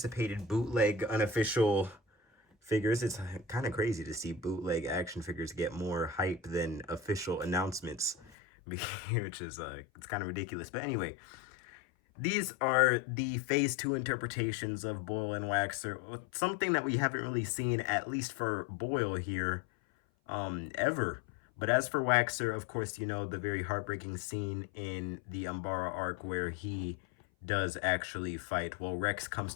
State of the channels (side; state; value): right; drops out; at 8.3 s